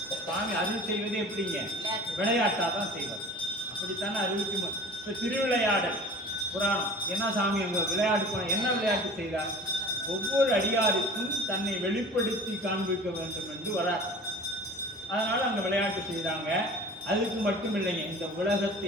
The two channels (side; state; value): both; normal; correlation 0.41